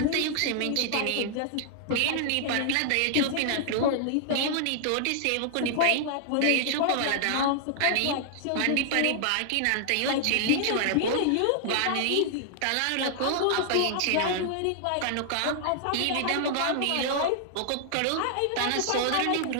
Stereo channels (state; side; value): different; both; correlation 0.00